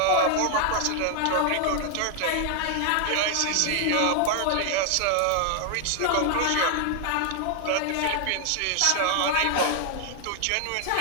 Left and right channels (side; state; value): both; different; correlation 0.00